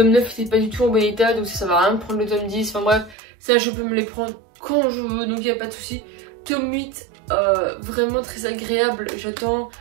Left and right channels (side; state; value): left; drops out; at 3.2 s